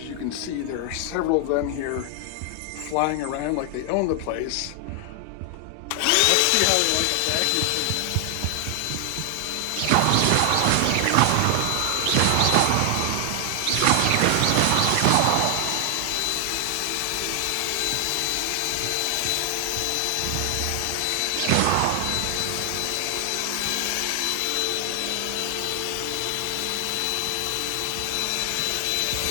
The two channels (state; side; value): different; both; correlation 0.00